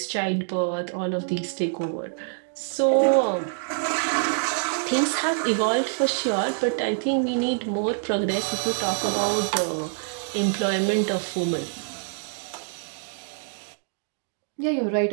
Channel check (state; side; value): silent; left; digital silence